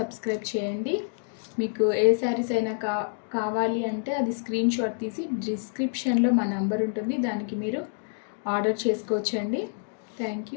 చేయండి. మీకు ఏ శారీస్ అయినా కావాలి అంటే అది స్క్రీన్ షాట్ తీసి డిస్క్రిప్షన్లో మా నంబర్ ఉంటుంది, దానికి మీరు ఆర్డర్ చేసుకోవచ్చండి.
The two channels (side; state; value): right; silent; digital silence